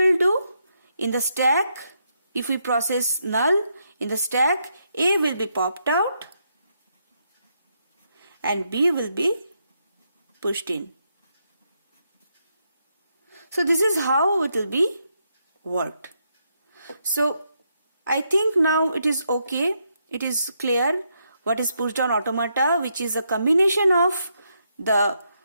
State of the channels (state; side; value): inverted; both; correlation -0.79